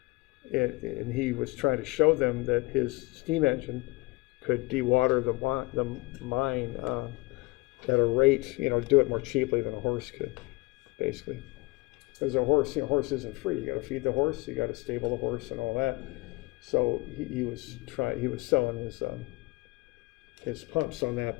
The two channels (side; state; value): right; quieter; 23.6 dB